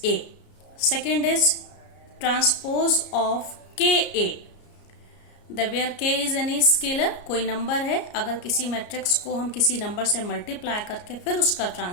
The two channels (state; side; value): late; right; 33 ms